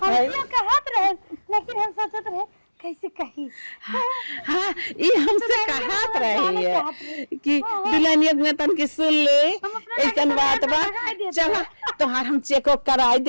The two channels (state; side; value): inverted; both; correlation -1.00